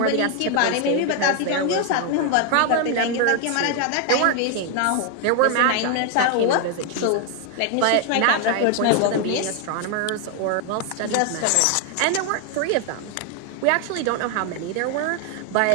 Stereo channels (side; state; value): both; different; correlation 0.01